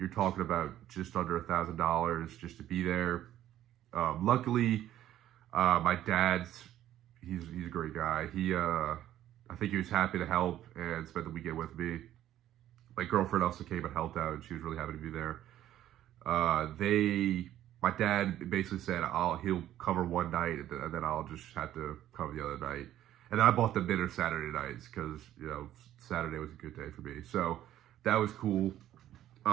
talking about just under $1,000 just to be there. Luckily, my dad's he's a great guy. I think he was happy to help and spend the weekend with me. My girlfriend also came and helped out, and she was really happy to be there. My dad basically said he'll cover one night, and then I'll just have to cover the other night. And then I bought them dinner Saturday nights, because, you know, Saturday was a good day for me. So that was cool.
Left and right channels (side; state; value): left; quieter; 12.5 dB